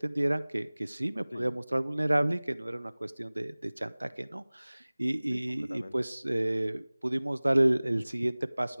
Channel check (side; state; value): both; inverted; correlation -1.00